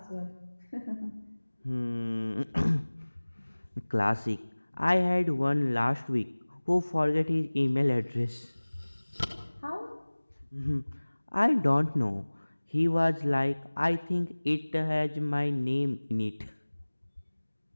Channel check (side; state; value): both; inverted; correlation -1.00